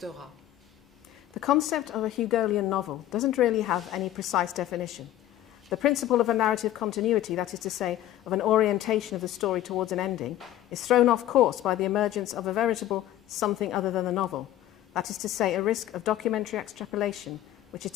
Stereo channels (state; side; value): quieter; right; 13.2 dB